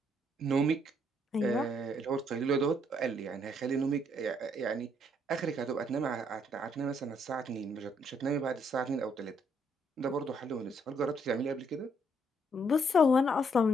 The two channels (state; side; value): normal; both; correlation 0.70